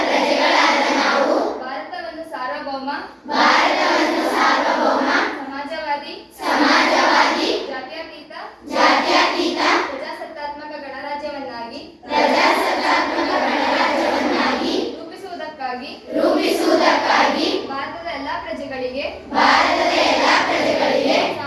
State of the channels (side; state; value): both; identical; correlation 1.00